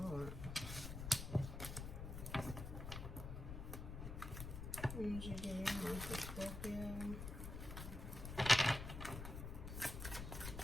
Energy do you have for Scorpio?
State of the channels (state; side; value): noise; left; rumble, 6 dB below the sound